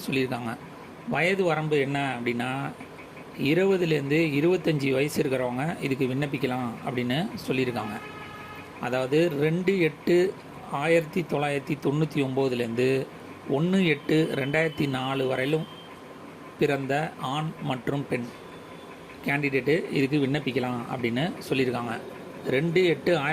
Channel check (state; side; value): identical; both; correlation 1.00